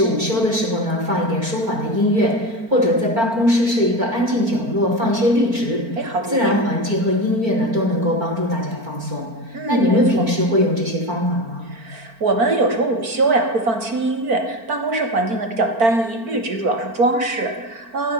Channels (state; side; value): late; left; 4.4 ms